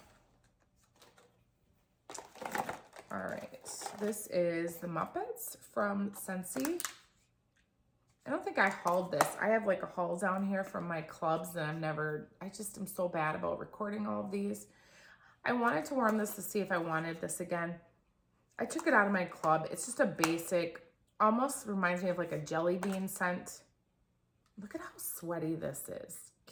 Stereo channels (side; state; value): both; identical; correlation 1.00